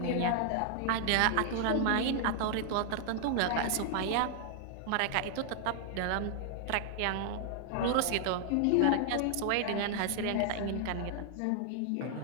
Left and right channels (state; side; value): different; both; correlation 0.00